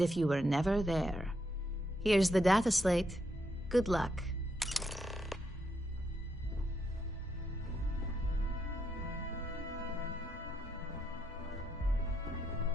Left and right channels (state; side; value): normal; both; correlation 0.78